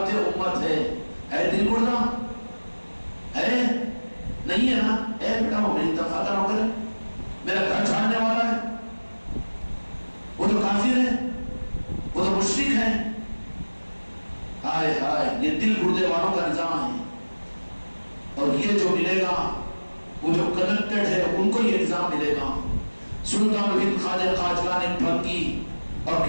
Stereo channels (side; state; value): both; inverted; correlation -1.00